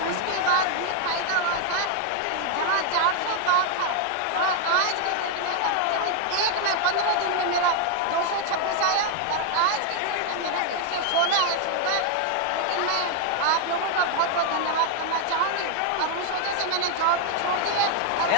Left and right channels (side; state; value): both; different; correlation 0.00